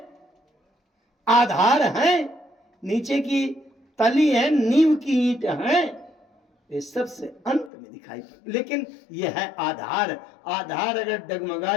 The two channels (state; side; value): drops out; right; at 7.7 s